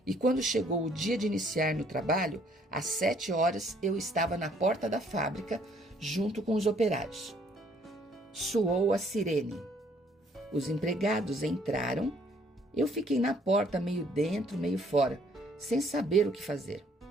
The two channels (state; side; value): normal; both; correlation 0.63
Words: e quando chegou o dia de iniciar no trabalho, às 7 horas eu estava na porta da fábrica junto com os operários. Soou a sirene. Os empregados entraram. Eu fiquei na porta, meio dentro, meio fora, sem saber o que fazer.